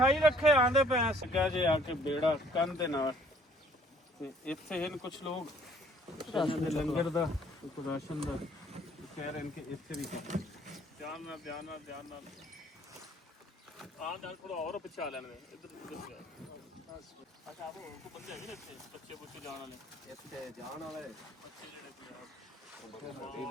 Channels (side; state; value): both; normal; correlation 0.59